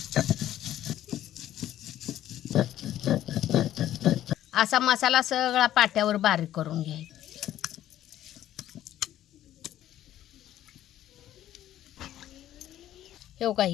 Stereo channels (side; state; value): right; quieter; 12.5 dB